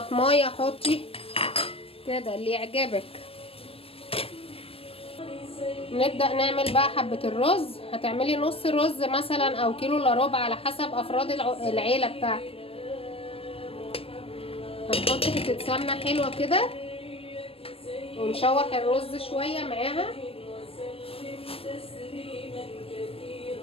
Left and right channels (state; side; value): late; right; 0.28 ms